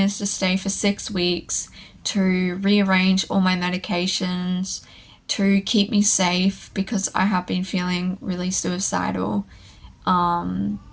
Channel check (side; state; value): both; identical; correlation 1.00